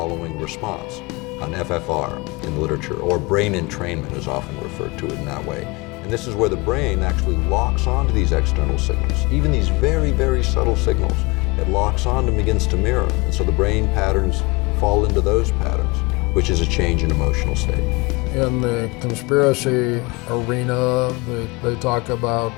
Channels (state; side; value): quieter; right; 25.6 dB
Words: response, an FFR in the literature, or brain entrainment is often referred to it in that way. And this is where the brain actually locks onto these external signals, even these very, very subtle signals. It locks on and begins to mirror. And so the brain patterns fall into those patterns, which is a change in emotional state. In the conspiracy arena, they talk about